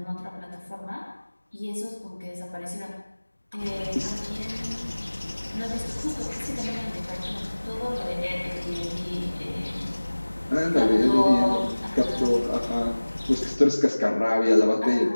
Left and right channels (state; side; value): inverted; both; correlation -1.00